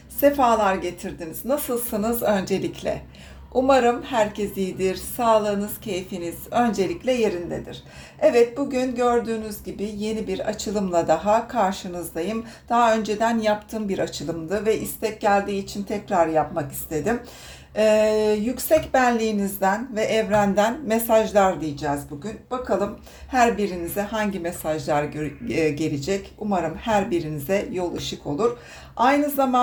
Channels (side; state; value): both; identical; correlation 1.00